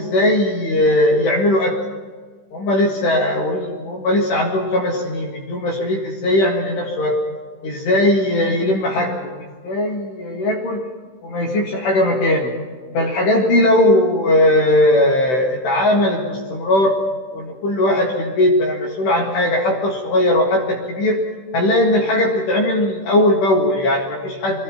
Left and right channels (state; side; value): late; right; 16 ms